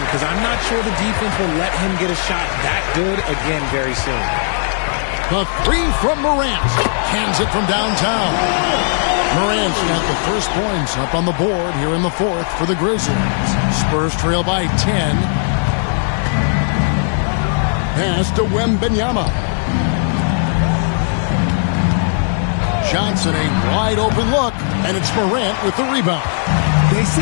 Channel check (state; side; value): silent; right; digital silence